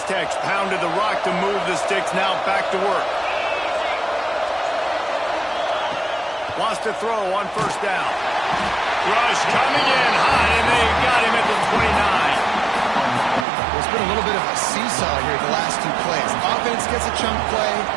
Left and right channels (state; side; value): drops out; left; at 13.5 s